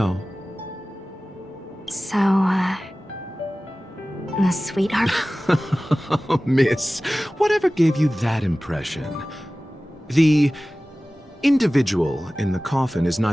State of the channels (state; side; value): normal; both; correlation 0.97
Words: So, a sweetheart? Miss, whatever gave you that impression? The individual in the coffin is